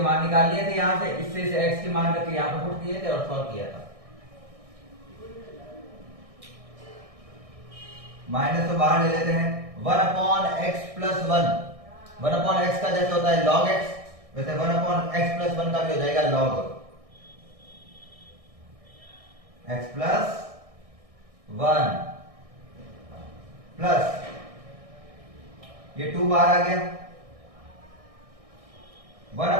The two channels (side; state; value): left; late; 1.6 ms